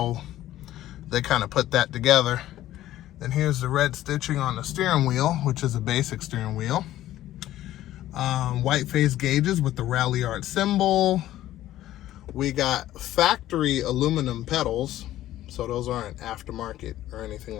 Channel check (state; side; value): quieter; right; 13.9 dB